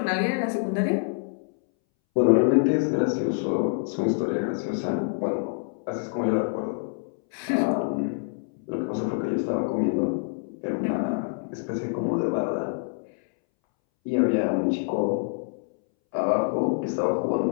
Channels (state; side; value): silent; right; 61 dB below the other